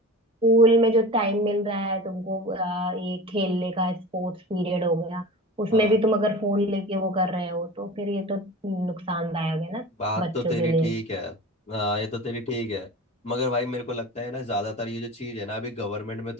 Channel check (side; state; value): both; normal; correlation 0.35